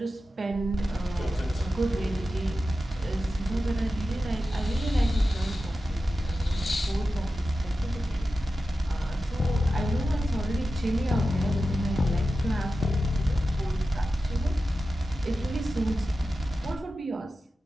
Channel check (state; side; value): normal; both; correlation 0.92